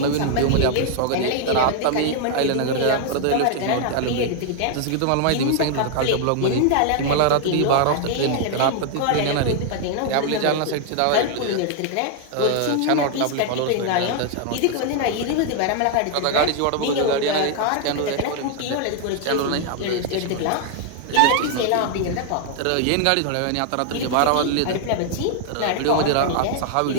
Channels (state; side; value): different; both; correlation 0.00